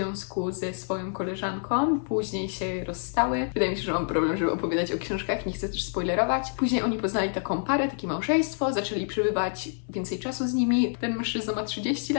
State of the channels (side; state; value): right; silent; 60 dB below the other